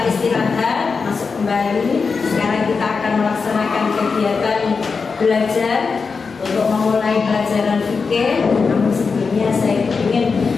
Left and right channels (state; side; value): quieter; right; 5.0 dB